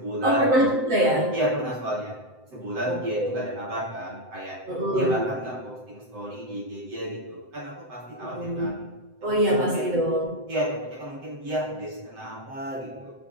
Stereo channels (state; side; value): late; left; 7.8 ms